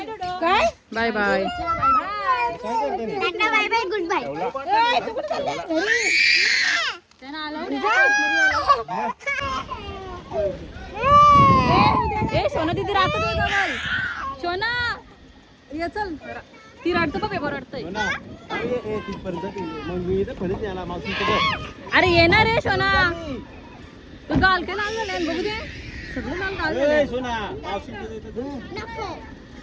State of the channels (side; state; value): both; identical; correlation 1.00